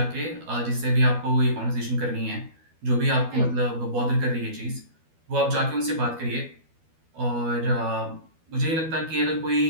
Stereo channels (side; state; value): left; late; 12 ms